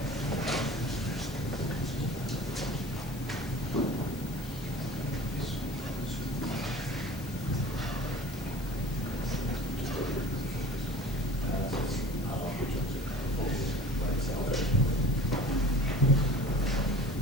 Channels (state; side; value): noise; left; hiss, 17 dB below the sound